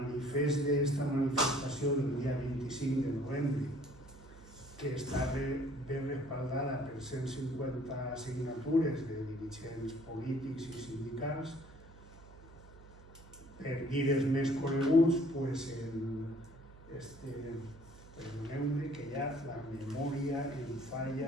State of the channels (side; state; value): right; noise; hum, 20 dB below the sound